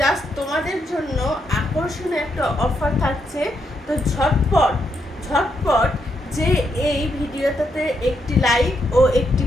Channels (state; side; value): normal; both; correlation 0.79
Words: জাস্ট তোমাদের জন্য আকর্ষণীয় একটা অফার থাকছে। তো ঝটপট যে এই ভিডিওটাতে একটি লাইক ও একটি